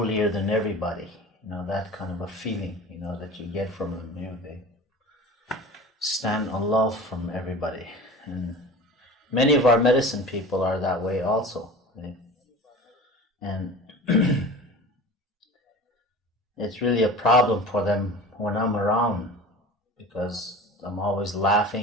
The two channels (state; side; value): normal; both; correlation 0.37